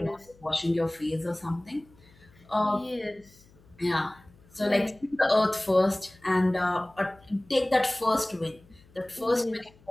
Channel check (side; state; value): left; noise; hum, 28 dB below the sound